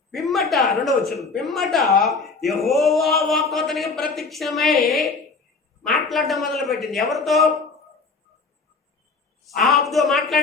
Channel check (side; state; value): right; quieter; 4.4 dB